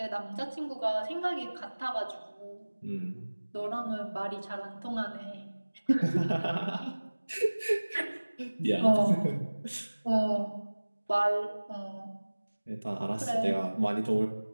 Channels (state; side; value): inverted; both; correlation -1.00